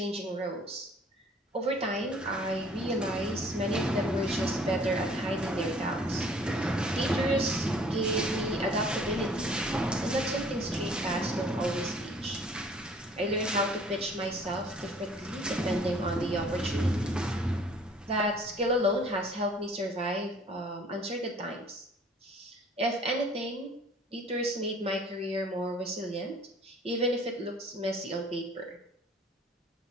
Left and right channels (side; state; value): both; normal; correlation 0.54